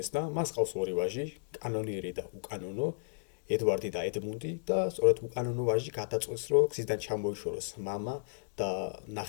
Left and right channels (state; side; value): silent; right; digital silence